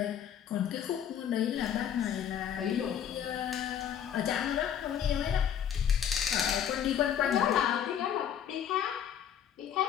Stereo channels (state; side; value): quieter; right; 9.2 dB